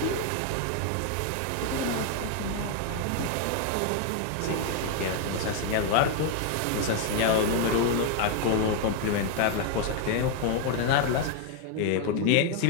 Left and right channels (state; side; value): different; both; correlation 0.01